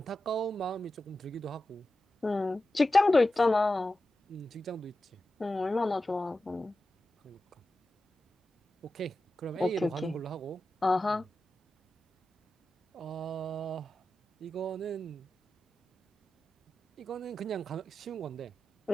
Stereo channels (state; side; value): normal; both; correlation 0.92